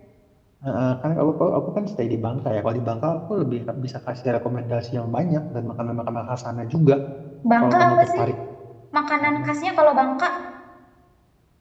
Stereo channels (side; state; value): both; identical; correlation 1.00